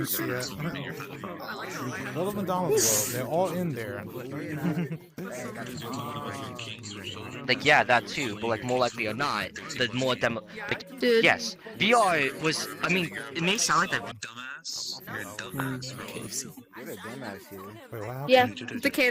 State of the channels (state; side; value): identical; both; correlation 1.00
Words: yeah. Go to the McDonald's world. They're all in there. Like, yeah, that too, but like more likely or not, the more like, Dude. yes, VR was, I mean, it may sound like that. Dumbass. You're a dumbass. Yeah, the